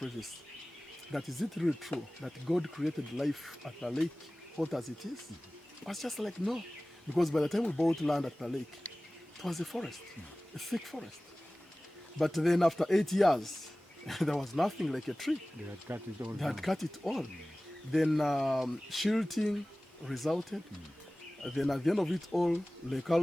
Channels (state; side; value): normal; both; correlation 0.98